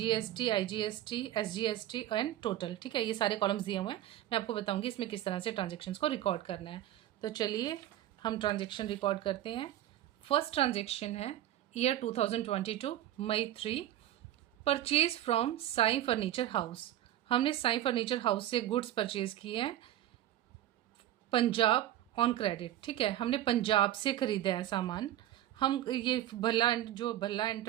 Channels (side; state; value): left; quieter; 13.0 dB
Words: IGST, SGST and total. ठीक है, ये सारे कॉलम्स दिए हुए हैं। मैं आपको बताऊंगी इसमें किस तरह से ट्रांजेक्शन्स को रिकॉर्ड करना है। तो चलिए हम ट्रांजेक्शन रिकॉर्ड करते हैं। फर्स्ट ट्रांजेक्शन है year 2022 May 3, purchase from Sai furniture house. हमने साई फर्नीचर हाउस से गुड्स परचेज किए हैं पंजाब ऑन क्रेडिट। ठीक है, हमने पंजाब से खरीदा है सामान। हम ये भल्ला